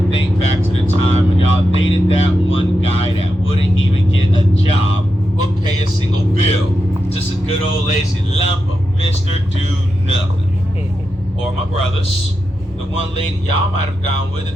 think back to the time when y'all dated that one guy that wouldn't even get a job or pay a single bill. Just a good old lazy lump of Mr. Do Nothing. Or my brothers, the one lady y'all might have gone with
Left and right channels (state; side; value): normal; both; correlation 0.88